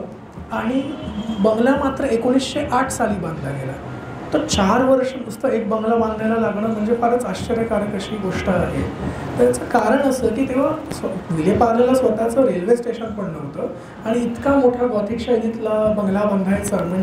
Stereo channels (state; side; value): identical; both; correlation 1.00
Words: आणि बंगला मात्र 1908 साली बांधला गेला. तर 4 वर्ष नुसतं एक बंगला बांधायला लागणं म्हणजे फारच आश्चर्यकारक अशी गोष्ट आहे. त्याचं कारण असं की तेव्हा विलेपार्लेला स्वतःचं रेल्वे स्टेशन पण नव्हतं आणि इतका मोठा गॉथिक शैलीतला बंगला बांधायचा